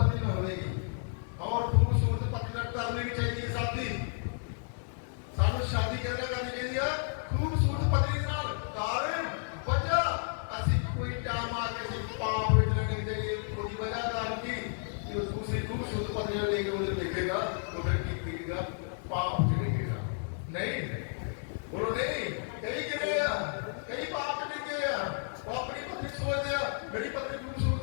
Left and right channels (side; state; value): right; silent; 56 dB below the other